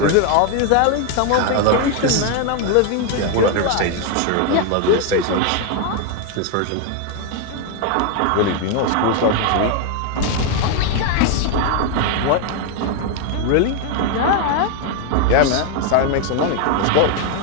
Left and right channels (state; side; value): different; both; correlation 0.01